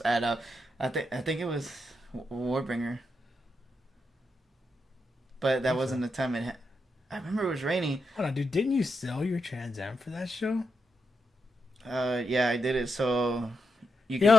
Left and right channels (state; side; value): normal; both; correlation 0.85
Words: at I think it was Warbringer. But that wasn't the time I remember it was raining. Hold on, dude. Didn't you sell your Trans Am for that show? Yeah, I did it so you